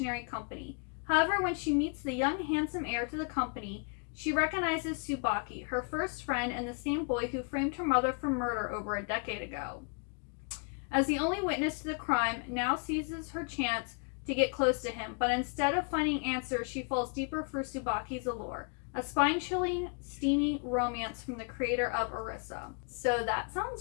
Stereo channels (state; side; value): quieter; right; 39.7 dB